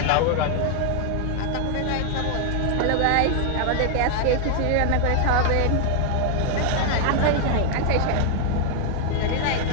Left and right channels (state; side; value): different; both; correlation 0.00